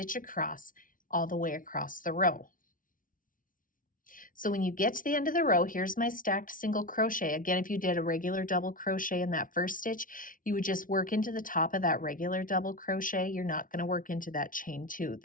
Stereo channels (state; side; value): late; right; 0.39 ms